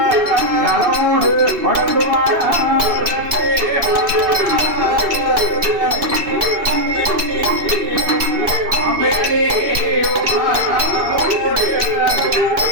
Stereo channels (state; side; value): late; left; 3.1 ms